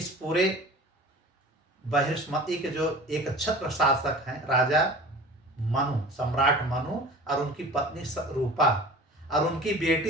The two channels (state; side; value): normal; both; correlation 0.40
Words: पूरे बहिष्मति के जो एक छत्र शासक हैं, राजा मनु, सम्राट मनु और उनकी पत्नी रूपा और उनकी बेटी